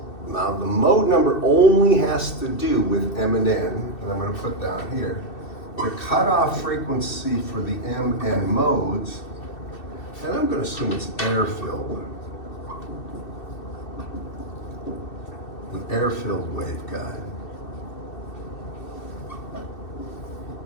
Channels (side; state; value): right; late; 2.7 ms